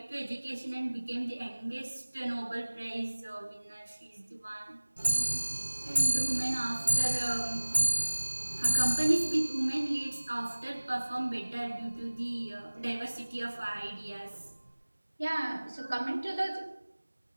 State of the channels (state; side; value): inverted; both; correlation -1.00